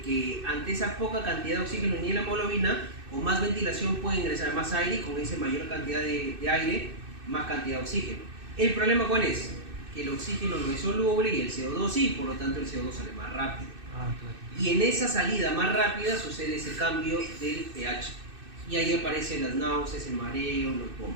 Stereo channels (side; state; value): left; late; 2.6 ms